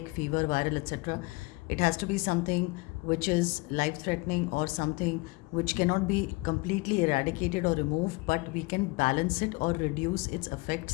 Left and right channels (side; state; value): right; quieter; 24.7 dB